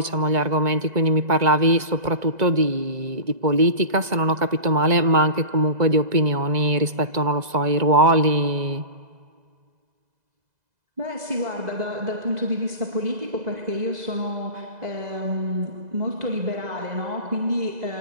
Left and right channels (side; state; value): left; late; 2.0 ms